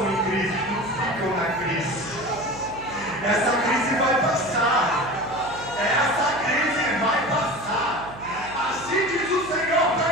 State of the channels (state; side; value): noise; right; hum, 17 dB below the sound